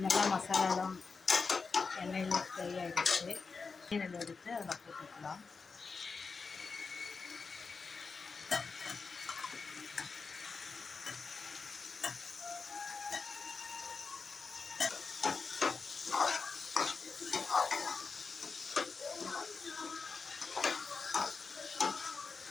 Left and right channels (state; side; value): quieter; right; 4.7 dB